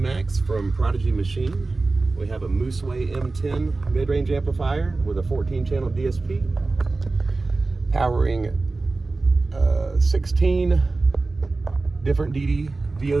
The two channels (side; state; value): left; quieter; 3.5 dB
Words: from Prodigy Machine. We have a Mooseway M10 mid-range amplifier with a 14-channel DSP. Powering 16 different DD VO